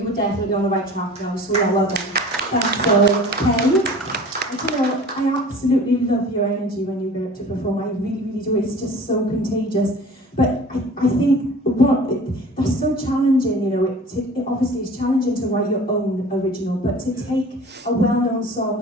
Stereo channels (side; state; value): both; normal; correlation 0.43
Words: were definitely on the right track now, so yeah, well done. Thanks, Penny. And you know, I absolutely love your energy when you go up to perform. I really, really do. It's just so contagious. But I think that's so challenging, you know. It obviously is challenging to write your own original, but to take a well-known